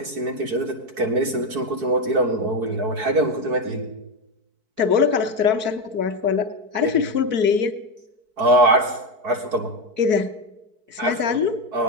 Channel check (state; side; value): late; left; 4.6 ms